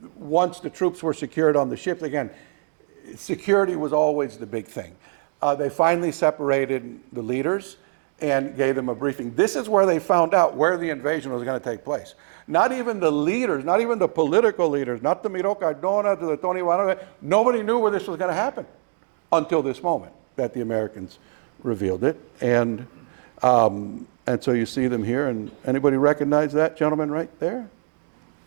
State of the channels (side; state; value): left; silent; 57 dB below the other